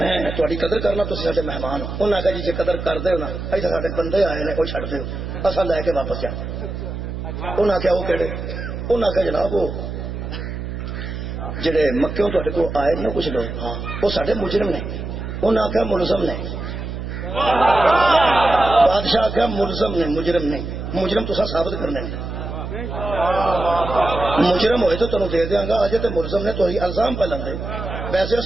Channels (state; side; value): noise; right; hum, 6 dB below the sound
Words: تھوڑی قدر کرنا تھی سارے مہمان ہو انہیں آخیا جی قدر کر دو نا ایسا سارے بندے آئے نے وہ چڑھ دو اصل لے کے واپس جا انہیں آخیا وہ کہڑے انہیں آخیا جناب وہ جڑے مکیوں تے کو آئے نا کچھ لوگ ہاں وہ سارے مجرم نے انہیں آخیا ملزم نے بادشاہ آخیا ملزم نے مجرم نہیں مجرم تو ثابت کرنے مجرم ہوئے تو تمہیں دے دیاں گا اجے تے ملزم نے تو الزام پہ لندے ویسے وہ